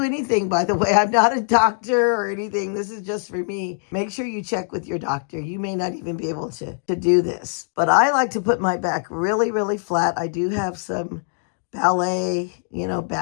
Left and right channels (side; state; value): right; silent; digital silence